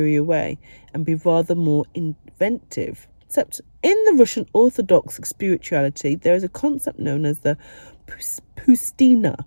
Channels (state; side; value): inverted; both; correlation -1.00